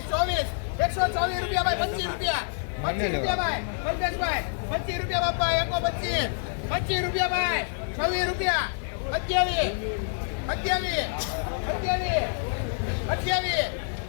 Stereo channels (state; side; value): silent; right; 60 dB below the other